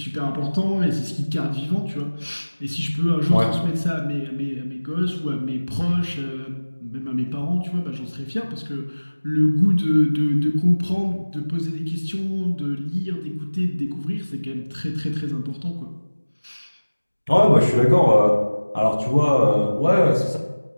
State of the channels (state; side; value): inverted; both; correlation -1.00